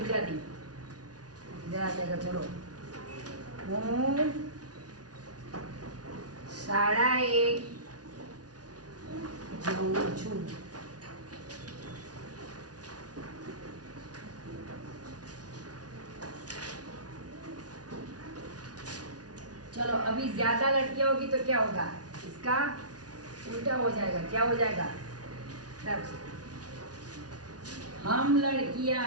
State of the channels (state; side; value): late; left; 0.69 ms